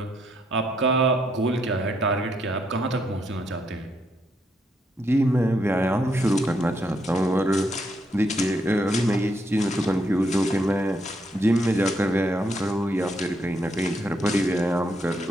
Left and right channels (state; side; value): normal; both; correlation 0.76